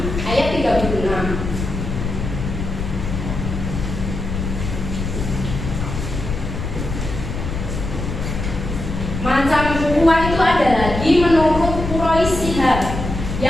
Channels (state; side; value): noise; left; rumble, 5 dB below the sound